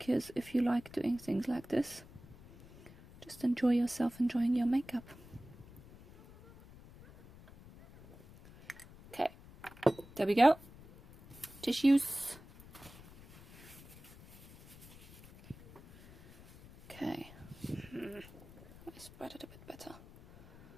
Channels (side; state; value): left; noise; rumble, 20 dB below the sound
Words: if you like doing things like this, just enjoy yourself enjoying your makeup. Okay, there we go. Tissues. Okay, let me spread it a bit better.